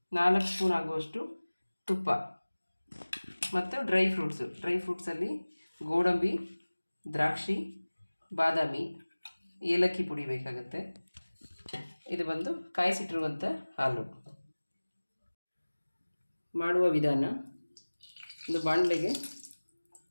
4 ಸ್ಪೂನ್ ಆಗುವಷ್ಟು ತುಪ್ಪ ಮತ್ತು ಡ್ರೈ ಫ್ರೂಟ್ಸಲ್ಲಿ ಗೋಡಂಬಿ, ದ್ರಾಕ್ಷಿ, ಬಾದಾಮಿ, ಏಲಕ್ಕಿ ಪುಡಿ ಬೇಕಾಗುತ್ತೆ. ಇದು ಬಂದು ಕಾಯಿಸಿಟ್ಟಿರುವಂಥ ಹಾಲು. ಮಾಡುವ ವಿಧಾನ: ಒಂದು ಬಾಣಲೆಗೆ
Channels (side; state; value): both; inverted; correlation -1.00